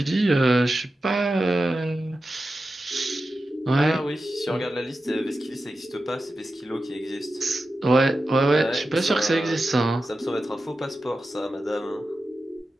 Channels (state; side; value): normal; both; correlation 0.92